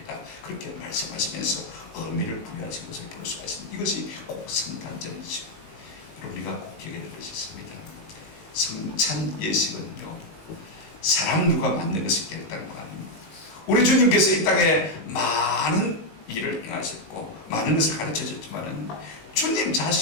그렇게 말씀하시면서 의미를 부여하신 것을 볼 수가 있습니다. 이것이 꼭 성탄절이죠. 우리가 꼭 기억해야 될 것이 있습니다. 성찬 예식은요, 사람 누가 만든 것이 결단한 거 아닙니다. 우리 주님께서 이 땅에 많은 일을 행하셨고 많은 것을 가르쳐 줬지만은 주님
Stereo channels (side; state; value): right; late; 18 ms